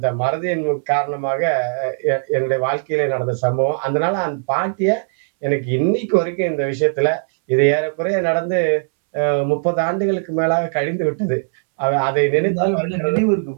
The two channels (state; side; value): silent; left; 66 dB below the other